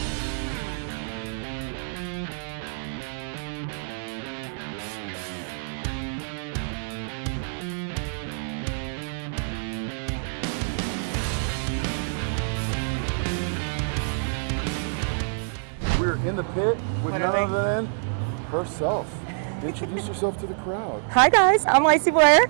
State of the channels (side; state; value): left; silent; digital silence